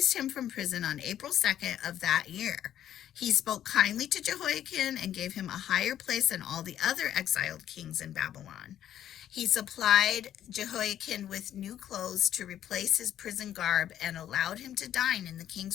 him from prison on April 2nd of that year. He spoke kindly to Jehioakin and gave him a higher place than all the other exiled kings in Babylon. He supplied Jehioakin with new clothes to replace his prison garb and allowed him to dine in the king's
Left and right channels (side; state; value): right; quieter; 11.0 dB